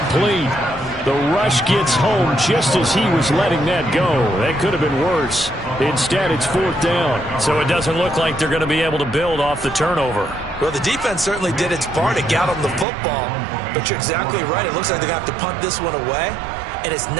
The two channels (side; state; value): left; drops out; at 12.9 s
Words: The rush gets home just as he was letting that go. That could have been worse. Instead, it's 4th down. So it doesn't look like they're going to be able to build off the turnover. Well, the defense certainly did its part to get on the football. But you're exactly right. It looks like they're going to have to punt this one away. And it's